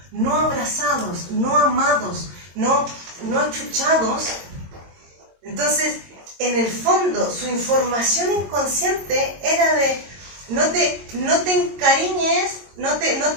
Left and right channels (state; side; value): late; left; 22 ms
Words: no abrazados, no amados, no achuchados. Entonces, en el fondo, su información inconsciente era de no te encariñes, no